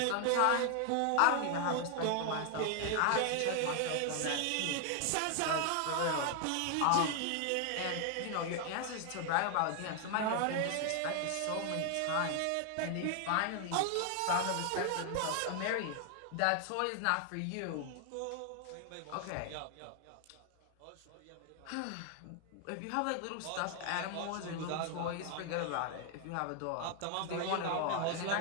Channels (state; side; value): different; both; correlation 0.00